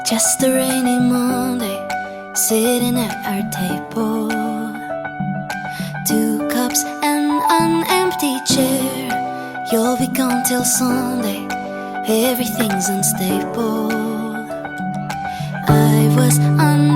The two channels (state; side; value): identical; both; correlation 1.00